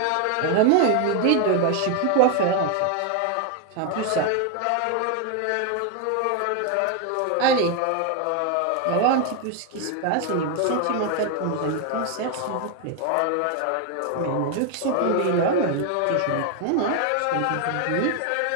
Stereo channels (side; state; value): both; different; correlation 0.01